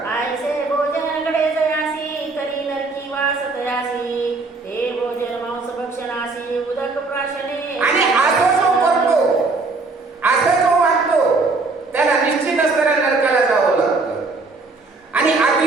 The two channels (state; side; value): quieter; left; 3.7 dB